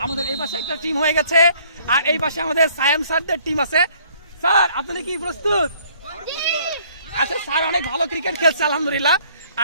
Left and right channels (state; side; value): inverted; both; correlation -0.61